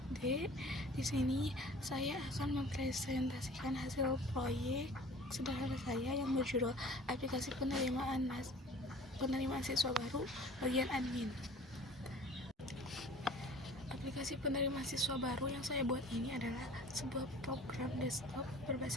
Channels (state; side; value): normal; both; correlation 0.46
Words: Di sini saya akan mempresentasikan hasil proyek sederhana saya yang berjudul Aplikasi Penerimaan Siswa Baru bagian admin. Aplikasi penerimaan siswa baru yang saya buat ini adalah sebuah program desktop